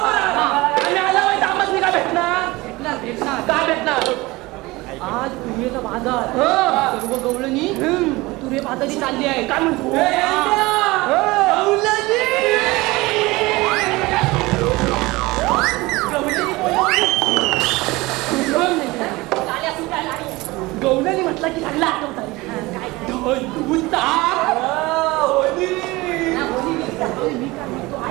आहे. आम्ही आल्यावर आम्हाला काय भेटणार भेटणार भेटणार काय भेटणार आज तुरेचा बाजार सर्व गवळणी तुरे बाजारी चालली आहे काय म्हणतो गवळणी म्हटलं की लागला आठवत मी काय म्हणतो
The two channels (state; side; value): quieter; left; 21.4 dB